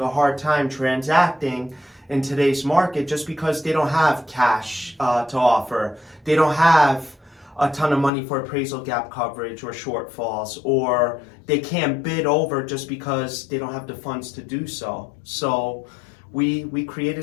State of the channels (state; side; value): drops out; right; at 8.1 s